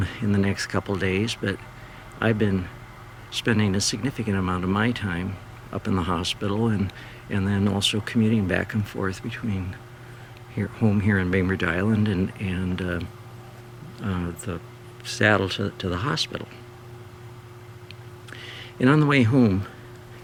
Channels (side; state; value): both; identical; correlation 1.00